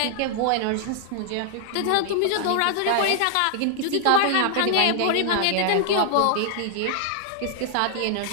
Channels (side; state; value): both; different; correlation 0.00